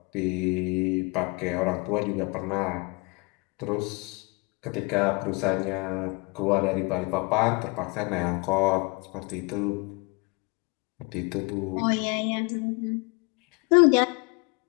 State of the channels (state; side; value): quieter; right; 27.7 dB